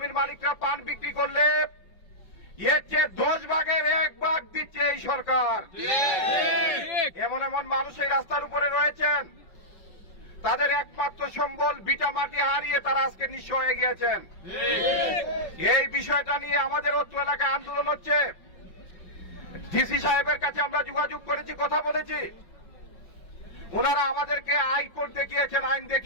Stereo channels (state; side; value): late; right; 5.4 ms